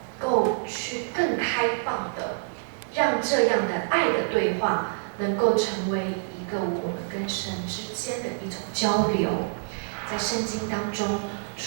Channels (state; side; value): silent; left; digital silence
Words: 够去更开放的，让这样的爱的对话能够成为一个我们跟神之间的一种交流。在圣经当中，